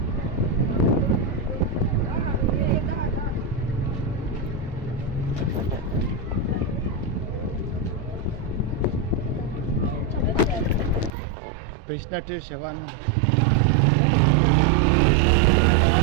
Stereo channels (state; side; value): drops out; left; at 11.1 s